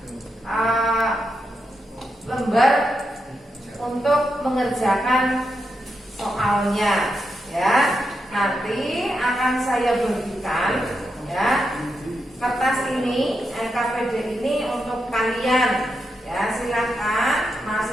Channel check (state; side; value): normal; both; correlation 0.85